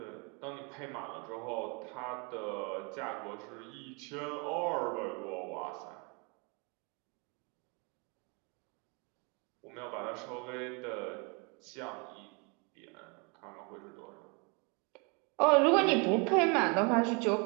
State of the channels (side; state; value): left; quieter; 32.5 dB